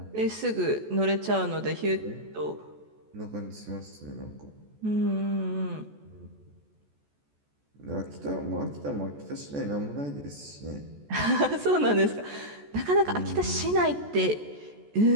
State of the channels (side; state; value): left; late; 14 ms